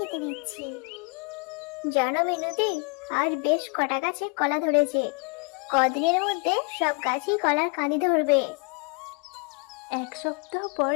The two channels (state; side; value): quieter; right; 34.2 dB